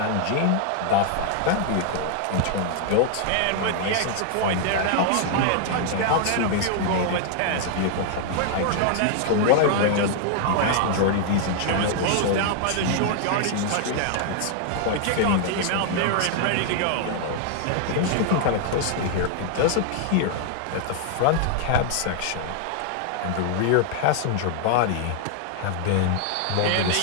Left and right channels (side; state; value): both; different; correlation 0.00